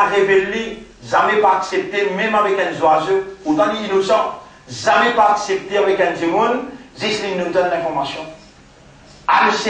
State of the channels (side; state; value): both; identical; correlation 1.00